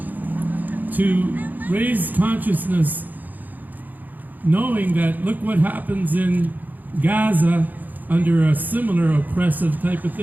to raise consciousness, knowing that look what happens in Gaza under a similar oppressive type of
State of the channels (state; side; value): late; left; 0.084 ms